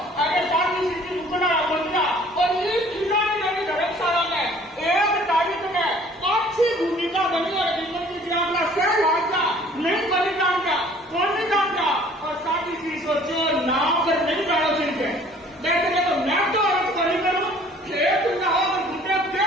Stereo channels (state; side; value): normal; both; correlation 0.54